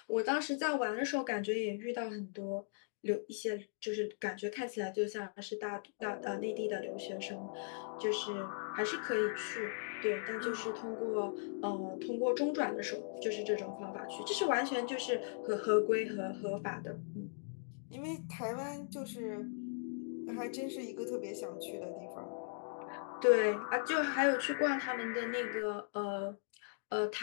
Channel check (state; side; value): silent; right; digital silence